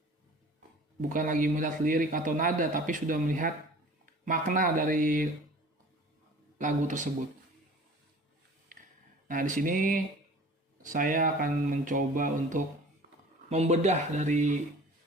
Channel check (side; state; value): both; normal; correlation 0.45